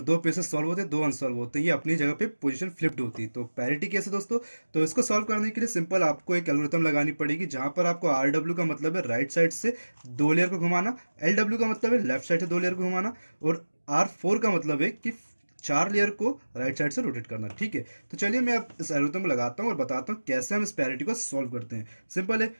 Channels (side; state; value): both; inverted; correlation -1.00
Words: सॉल्व होते हैं, 2 अनसॉल्व होते हैं, ये अपनी जगह पे पोजीशन फ्लिप्ड होती है। तो पैरिटी कैसे दोस्तों? तो इसको सॉल्व करने के लिए सिंपल आपको एक एल्गोरिथम लगानी पड़ेगी, जहां पर आपको आर डब्ल्यू का मतलब है राइट साइड से 2 लेयर को घुमाना, एल डब्ल्यू का मतलब है लेफ्ट साइड से 2 लेयर को घुमाना, और आर 4 का मतलब है कि 4 लेयर को राइट साइड से रोटेट करना। ठीक है, तो चलिए मैं अब इस एल्गोरिथम को लगाता हूँ और बताता हूँ कैसे हम इस पैरिटी को सॉल्व करते हैं। सिंपल है,